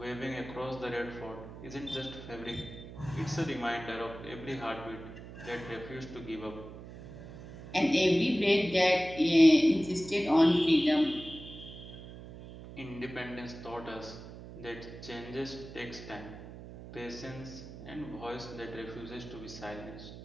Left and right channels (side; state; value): right; noise; hum, 14 dB below the sound